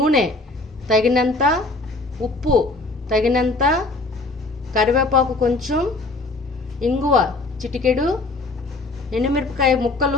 తగినంత, ఉప్పు తగినంత, కరివేపాకు కొంచెం, ఇంగువ చిటికెడు, ఎండుమిరపకాయ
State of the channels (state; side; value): quieter; right; 3.2 dB